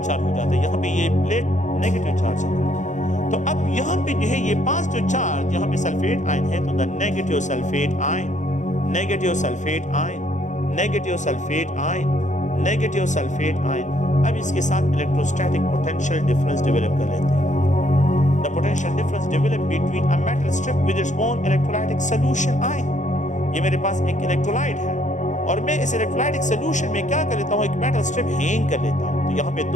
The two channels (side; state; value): right; late; 0.35 ms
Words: हो जाता है, यहाँ पे ये प्लेट नेगेटिव चार्ज है। तो अब यहाँ पे जो है ये पॉजिटिव चार्ज, यहाँ पे सल्फेट आयन है तो the negative sulphate ion, negative sulphate ion, negative sulphate ion, negative sulphate ion. अब इसके साथ इलेक्ट्रोस्टैटिक पोटेंशियल डिफरेंस डेवलप कर लेते हैं। The potential difference developed between a metal strip with its own electrolytic solution ion. ये मेरे पास एक electrolyte है और मैं इस इलेक्ट्रोलाइटिक सोल्यूशन में क्या कर लेता हूँ, एक मेटल स्ट्रिप हैंग कर लेता हूँ। तो यहाँ पे